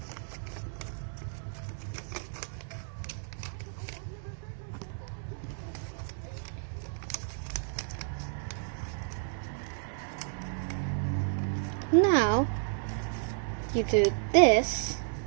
Now, you do this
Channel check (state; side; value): silent; left; digital silence